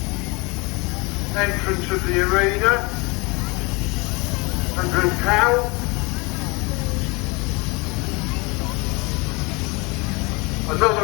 entrance of the arena. Andrew Cowell.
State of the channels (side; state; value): right; quieter; 27.4 dB